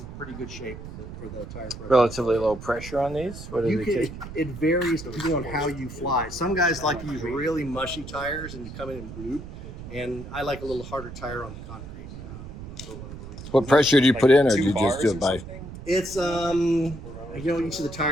pretty good shape for the tire pressure. Relatively low pressure on these? What do they take? It varies depending on how you fly. Some guys like to use really mushy tires and you come in and bloop, and I like a little harder tire on the concrete. For whatever reason. What pressure do you put in, or do you just do it by? It's you know, each of the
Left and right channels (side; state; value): right; noise; rumble, 12 dB below the sound